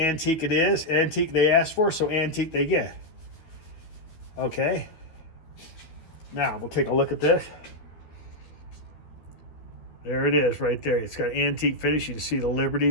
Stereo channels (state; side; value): late; right; 12 ms